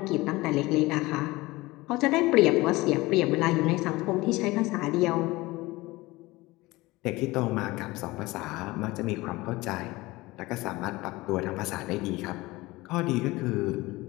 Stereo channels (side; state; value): right; quieter; 20.6 dB